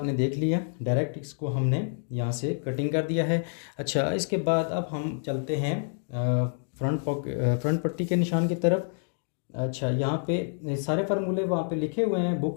देख लिया, डायरेक्ट इसको हमने यहाँ से कटिंग कर दिया है। अच्छा, इसके बाद अब हम चलते हैं फ्रंट पट्टी के निशान की तरफ। अच्छा, यहाँ पे सारे फार्मूले वहाँ पे लिखे हुए हैं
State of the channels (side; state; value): right; silent; digital silence